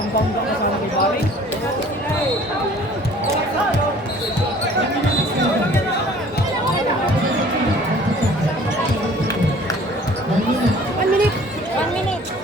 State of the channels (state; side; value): normal; both; correlation 0.51